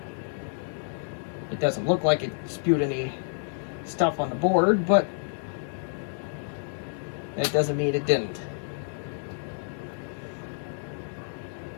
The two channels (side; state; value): right; silent; digital silence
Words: It doesn't look like it spewed any stuff on the board, but that doesn't mean it didn't.